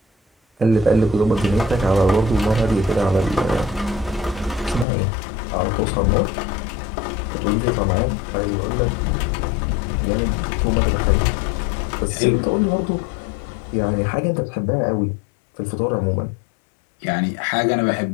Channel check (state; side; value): drops out; right; at 4.9 s